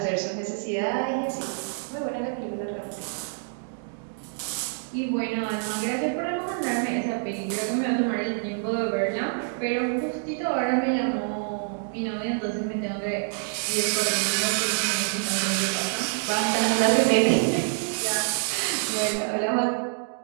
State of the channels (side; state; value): left; silent; 60 dB below the other